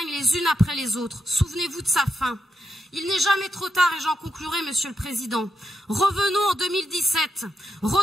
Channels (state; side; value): normal; both; correlation 0.84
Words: les unes après les autres. Souvenez-vous de sa fin. Il n'est jamais trop tard et j'en conclurai, Monsieur le Président. Revenons en 2017,